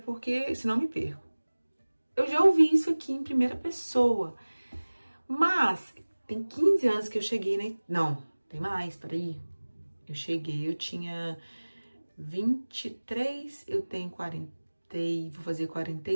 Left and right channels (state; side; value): inverted; both; correlation -1.00